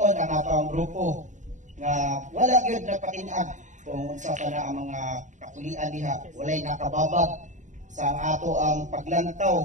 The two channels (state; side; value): late; left; 0.36 ms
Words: ang ato ang grupo nga wala gyud napatinag kung unsa pa na ang mga kapulian diha, walay nakababag sa ato ang